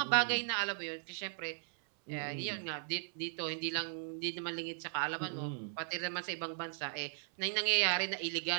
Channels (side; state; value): left; silent; 53 dB below the other